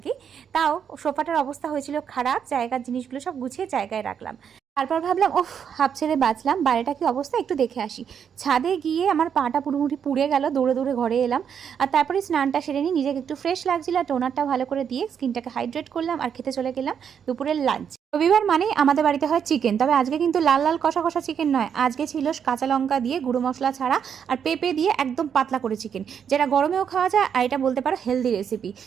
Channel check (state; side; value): quieter; left; 7.8 dB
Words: তাও সোফাটার অবস্থা হয়েছিল খারাপ, জায়গার জিনিসগুলো সব গুছিয়ে জায়গায় রাখলাম। তারপর ভাবলাম, ওহ, হাফ ছেড়ে বাঁচলাম, বাইরেটা কি অবস্থা একটু দেখে আসি। ছাদে গিয়ে আমার পাটা পুরোপুরি পুড়ে গেল, দৌড়ে দৌড়ে ঘরে এলাম। আর তারপরে স্নানটা সেরে নিই, নিজেকে একটু ফ্রেশ লাগছিল, আর টোনারটা ভালো করে দিয়ে স্কিনটাকে হাইড্রেট করলাম, আর খেতে চলে গেলাম দুপুরের লাঞ্চ। রবিবার মানে আমাদের বাড়িতে হয় চিকেন, তবে আজকে কিন্তু লাল লাল কষা কষা চিকেন নয়, আজকে ছিল কাঁচা লঙ্কা দিয়ে গুঁড়ো মশলা ছাড়া আর পেঁপে দিয়ে একদম পাতলা করে চিকেন, যেটা গরমেও খাওয়া যায়, আর এটা বলতে পারো হেলদি রেসিপি।